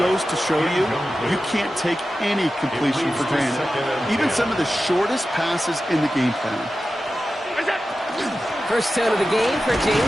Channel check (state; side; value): normal; both; correlation 0.93